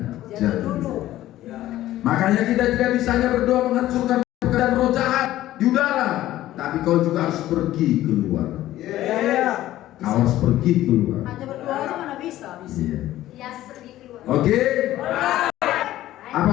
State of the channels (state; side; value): quieter; right; 14.5 dB